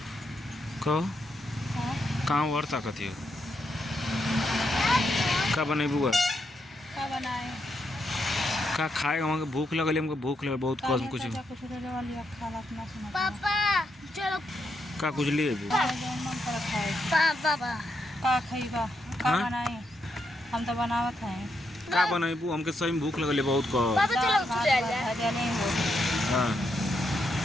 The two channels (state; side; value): normal; both; correlation 0.81